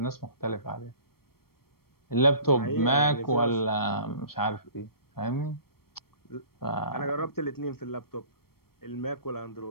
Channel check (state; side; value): late; right; 0.94 ms